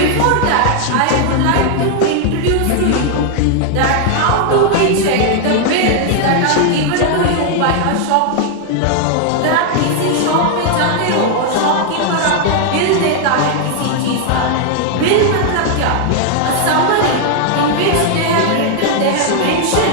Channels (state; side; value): different; both; correlation 0.00